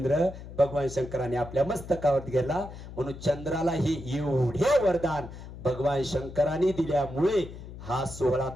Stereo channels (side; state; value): left; noise; hum, 13 dB below the sound